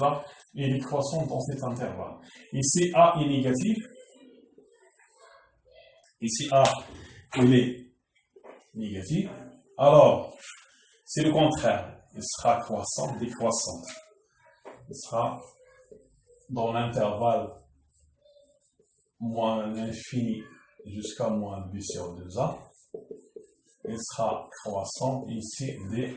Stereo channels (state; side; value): identical; both; correlation 1.00